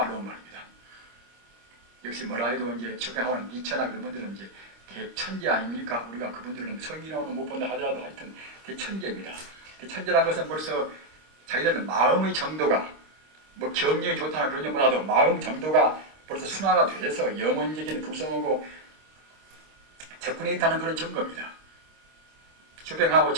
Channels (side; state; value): left; late; 26 ms